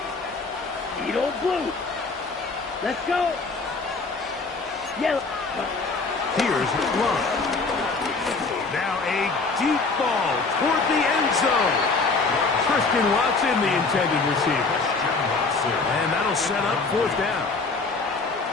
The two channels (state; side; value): quieter; right; 4.0 dB